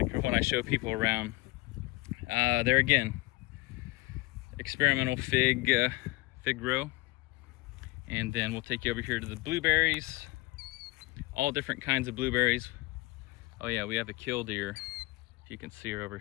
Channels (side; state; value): right; quieter; 21.2 dB